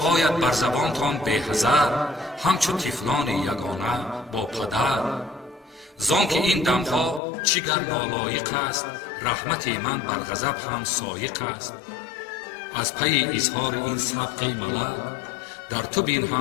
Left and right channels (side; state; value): right; drops out; at 7.2 s